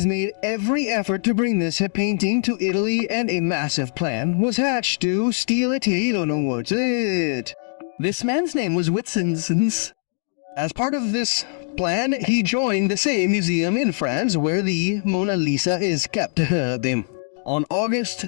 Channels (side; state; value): right; silent; digital silence